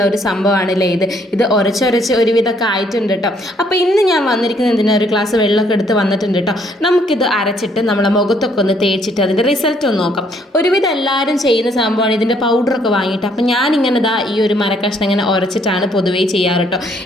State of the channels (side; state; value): both; normal; correlation 0.67